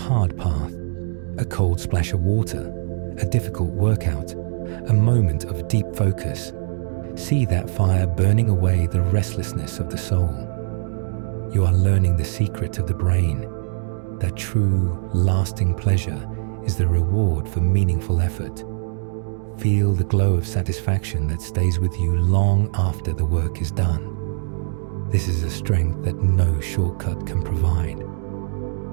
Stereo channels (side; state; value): left; silent; digital silence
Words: path, a cold splash of water, a difficult workout, a moment of deep focus, see that fire burning away the restlessness of the soul. You are learning the secret of the brain, that true, lasting pleasure is the reward for meaningful effort. Feel the glow of satisfaction that stays with you long after the work is done. This is a strength that no shortcut can provide.